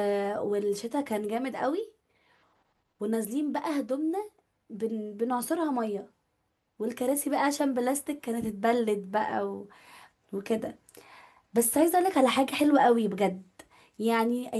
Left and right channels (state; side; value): identical; both; correlation 1.00